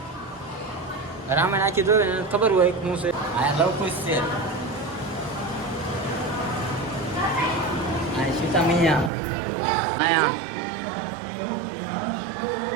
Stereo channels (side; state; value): left; drops out; at 9.1 s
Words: રામે નાખી જોયું ને ખબર હોય શું છે અહીંયા લવકુશ છે સીતા મૈયા આયા